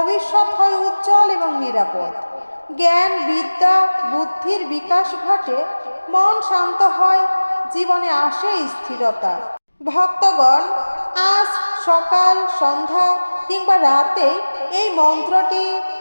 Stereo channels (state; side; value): inverted; both; correlation -1.00